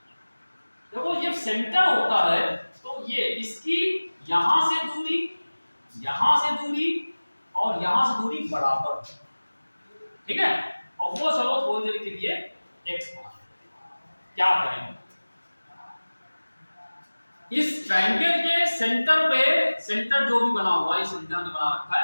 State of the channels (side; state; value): both; inverted; correlation -1.00